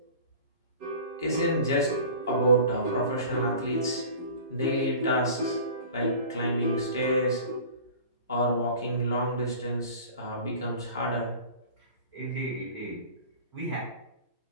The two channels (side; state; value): both; inverted; correlation -0.41